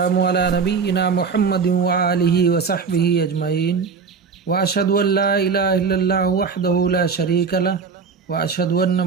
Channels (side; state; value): left; quieter; 5.5 dB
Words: علی نبینا محمد وآلہ وصحبہ اجمعین واشہد ان لا الہ الا اللہ وحدہ لا شریک لہ واشہد ان